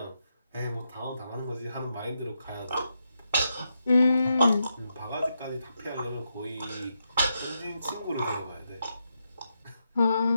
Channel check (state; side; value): inverted; both; correlation -0.84